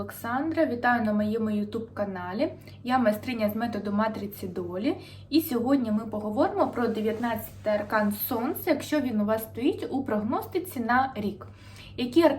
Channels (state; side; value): identical; both; correlation 1.00